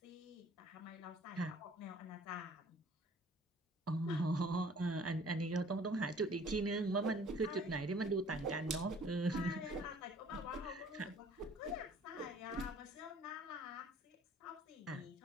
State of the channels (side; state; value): both; normal; correlation 0.54